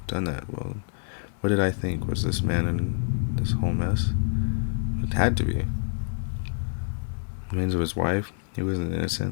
Done that. Well, what did I think? Was this man in this whole mess? It had to be. The remains of his wife? He wasn't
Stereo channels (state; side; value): silent; right; digital silence